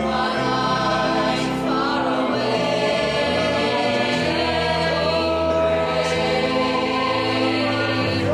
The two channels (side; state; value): both; identical; correlation 1.00